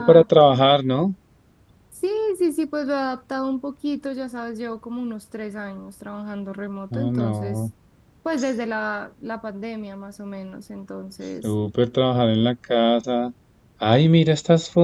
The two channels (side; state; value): both; identical; correlation 1.00